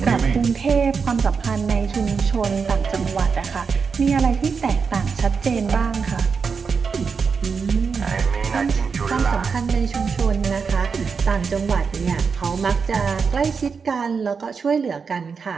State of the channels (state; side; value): quieter; left; 5.6 dB